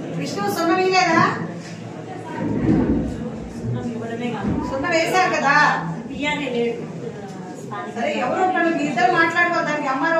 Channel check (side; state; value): both; identical; correlation 1.00